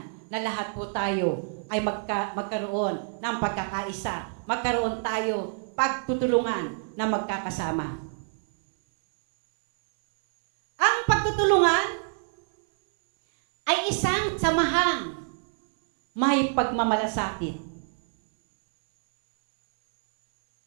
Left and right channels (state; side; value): silent; left; 60 dB below the other